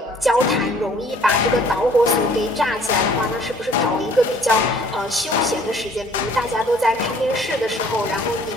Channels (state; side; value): normal; both; correlation 0.56